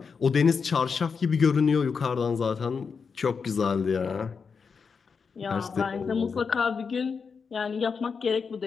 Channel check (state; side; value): quieter; right; 5.6 dB